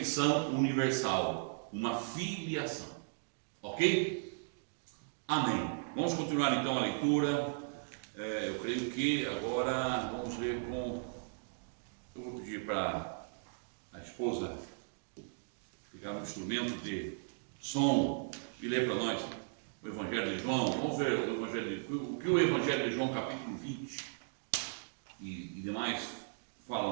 universal, uma filiação. Ok? Amém. Vamos continuar então a leitura. Eu creio que agora vamos ler com... Eu vou pedir para a esposa ficar no instrumento de som e ler para nós o Evangelho de João. Vamos ver o que o Evangelho de João, capítulo 20 e demais fala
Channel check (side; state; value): left; silent; digital silence